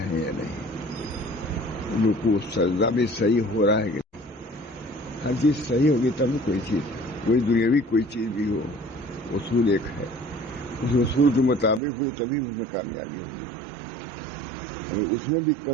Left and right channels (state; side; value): drops out; left; at 11.8 s